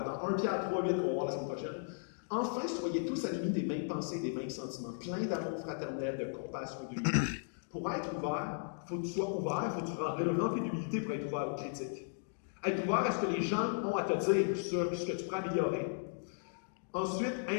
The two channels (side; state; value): right; silent; digital silence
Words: Dans 1 Pierre 3.8, qu'on va voir la semaine prochaine. Enfin, soyez tous animés des mêmes pensées, des mêmes sentiments, pleins d'amour fraternel, de compassion et d'unité. Pour être ouvert, il faut que tu sois ouvert, il faut que tu sois rempli d'humilité pour être ouvert aux critiques. Être ouvert à ce que les gens ont à te dire sur ce que tu pourrais améliorer. Ensuite,